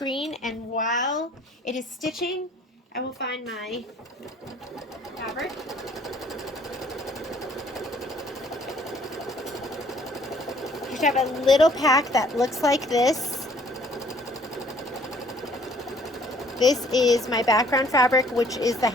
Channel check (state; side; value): normal; both; correlation 0.59